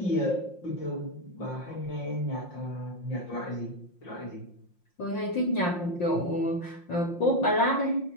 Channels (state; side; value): late; right; 5.7 ms